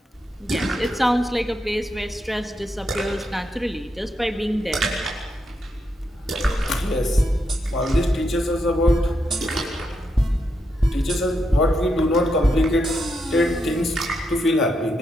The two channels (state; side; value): normal; both; correlation 0.82